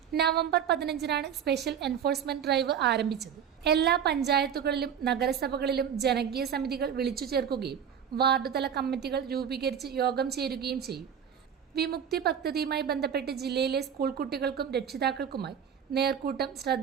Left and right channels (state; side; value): quieter; left; 8.2 dB